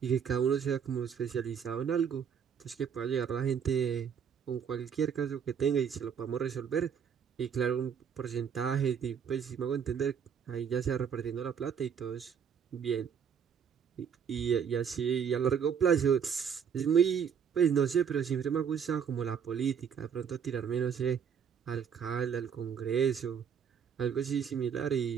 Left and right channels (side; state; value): left; quieter; 7.5 dB